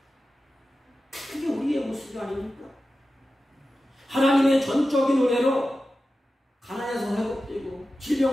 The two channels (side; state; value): both; normal; correlation 0.93